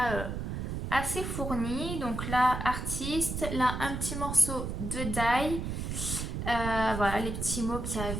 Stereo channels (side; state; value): right; noise; rumble, 4 dB below the sound